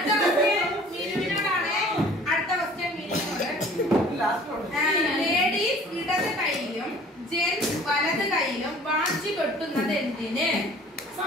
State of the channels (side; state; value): both; normal; correlation 0.50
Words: ക്വസ്റ്റ്യൻ മിനുവിനോടാണ്. അടുത്ത ക്വസ്റ്റ്യൻ മിനുവിനോട്. ലേഡീസ് ഇടത് കൈയിലും ജെന്റ്സ് വലത് കൈയിലും വാച്ച് കെട്ടുന്നത് എന്തിന്?